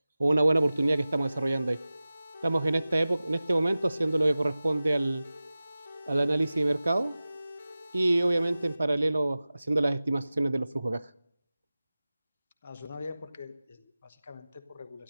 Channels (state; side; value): inverted; both; correlation -0.97